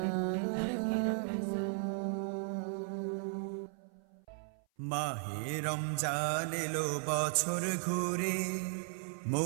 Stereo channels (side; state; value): left; silent; 54 dB below the other